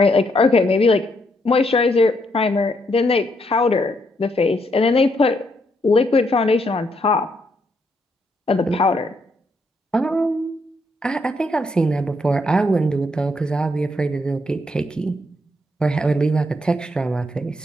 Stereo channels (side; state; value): both; normal; correlation 0.75